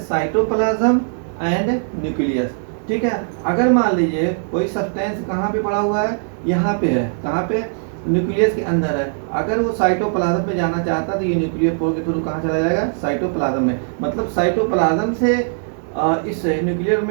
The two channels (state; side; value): silent; left; 61 dB below the other